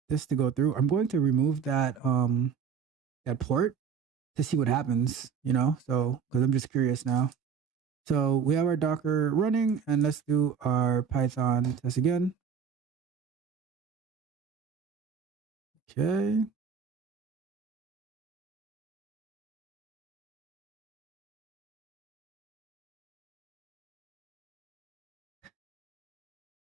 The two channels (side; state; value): left; quieter; 6.7 dB